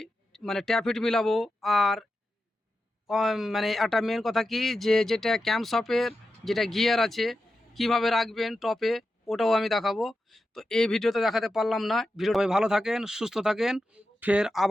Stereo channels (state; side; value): normal; both; correlation 0.90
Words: মানে ট্যাফিট মিলাবো, আর মানে একটা মেন কথা কি, যে যেটা ক্যাম্প শপের যেটা গিয়ার আছে কিভাবে রাখবেন টপে, ওটাও আমি দেখাবো। তো এই ভিডিওতে দেখাতে পারলাম না। ভিডিও ভালো থাকেন, সুস্থ থাকেন, ফের